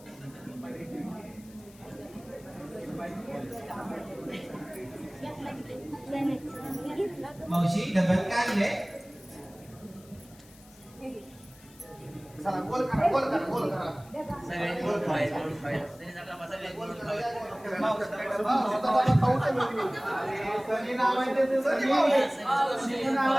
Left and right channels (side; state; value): left; noise; hiss, 24 dB below the sound